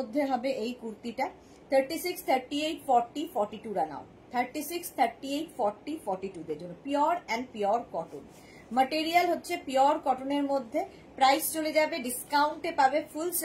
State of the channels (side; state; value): both; identical; correlation 1.00